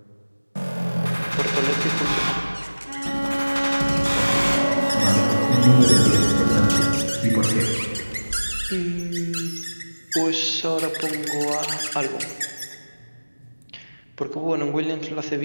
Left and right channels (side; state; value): both; inverted; correlation -1.00